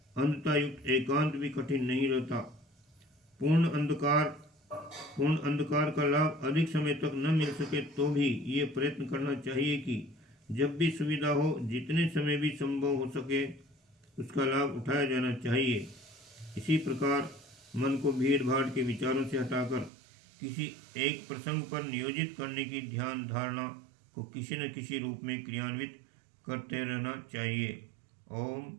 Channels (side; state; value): left; drops out; at 19.9 s